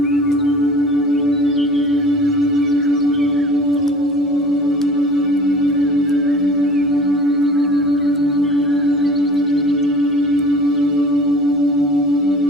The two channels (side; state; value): both; normal; correlation 0.43